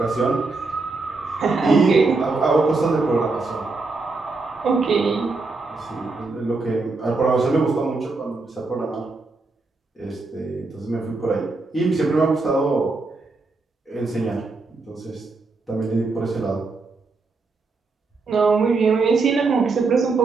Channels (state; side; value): quieter; left; 3.7 dB